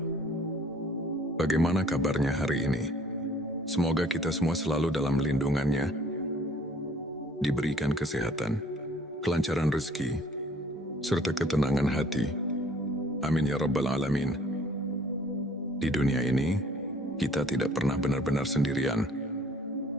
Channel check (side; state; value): both; normal; correlation 0.56